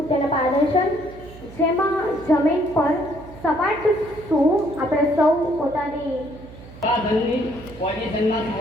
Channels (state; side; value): noise; right; hum, 18 dB below the sound